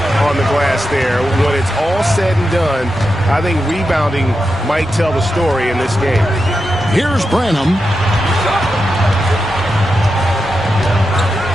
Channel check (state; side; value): normal; both; correlation 0.89